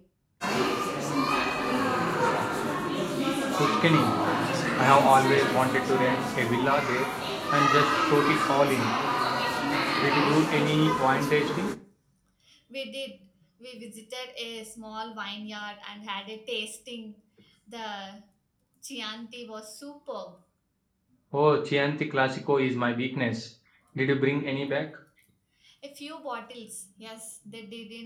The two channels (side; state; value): both; identical; correlation 1.00